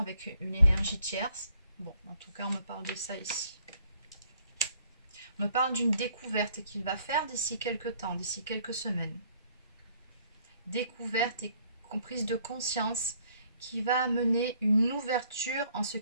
une énergie tierce. Bon, en tout cas, on me parle de ça ici. On me parle d'une découverte qu'il va faire d'ici quelques temps, d'ici quelques semaines. Découverte et prise de conscience qui va amener une ouverture en ce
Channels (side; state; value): both; inverted; correlation -0.64